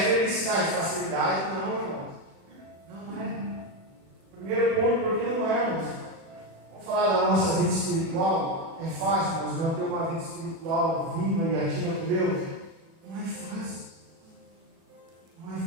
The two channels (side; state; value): left; late; 36 ms